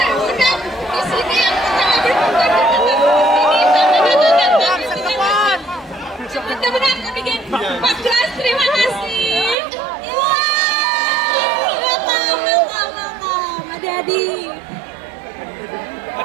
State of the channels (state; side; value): drops out; left; at 9.6 s